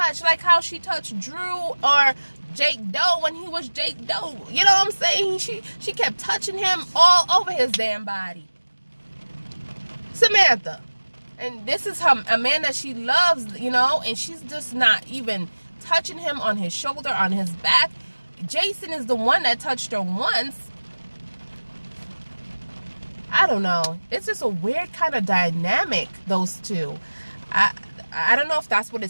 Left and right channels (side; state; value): both; inverted; correlation -1.00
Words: like how she touched Drew or Jake Doe when he was Jake Doe. You know what I'm saying? She kept touching him all over his damn body. Samantha. And this is a man that she loves, you know, and she's just not even touching him on his shoulder, on his back. Jason is the one that touched her once. I don't know. It's just a weird kind of dynamic, those two. I don't know if that's what